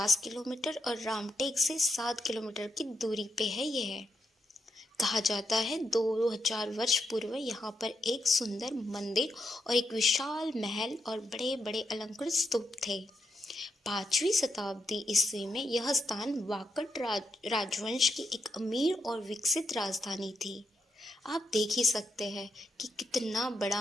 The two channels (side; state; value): both; normal; correlation 0.81